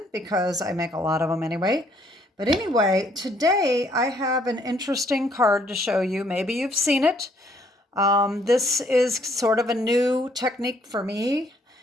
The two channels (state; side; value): normal; both; correlation 0.66